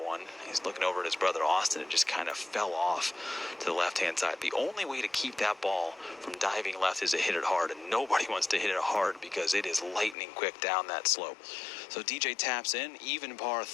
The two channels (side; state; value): right; drops out; at 10.2 s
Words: He's looking over at his brother Austin. It just kind of fell off to the left-hand side. The only way to keep that ball from diving left is to hit it hard, and nobody wants to hit it hard because it is lightning quick down that slope. So DJ taps in, even par